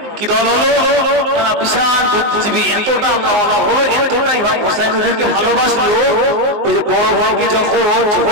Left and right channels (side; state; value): left; late; 19 ms